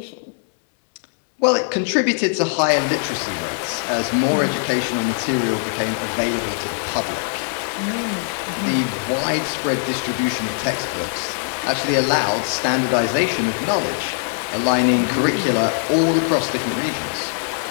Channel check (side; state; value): right; silent; digital silence